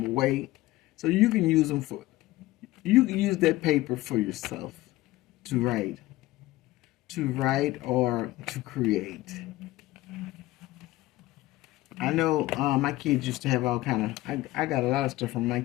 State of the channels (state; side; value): quieter; right; 17.7 dB